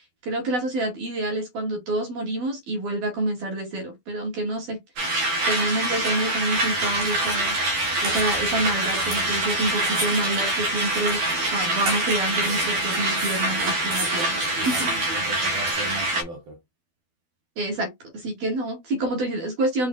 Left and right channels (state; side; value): late; left; 12 ms